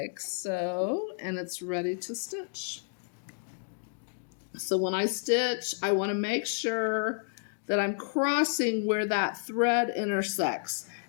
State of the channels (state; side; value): silent; right; digital silence